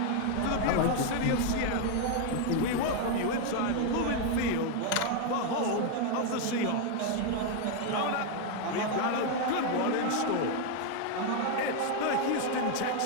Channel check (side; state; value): both; different; correlation 0.01